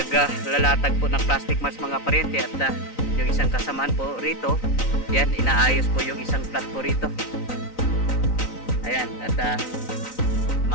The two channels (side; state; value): right; late; 3.9 ms